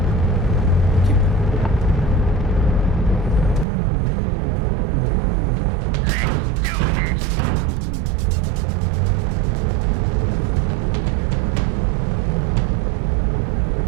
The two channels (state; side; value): drops out; left; at 3.7 s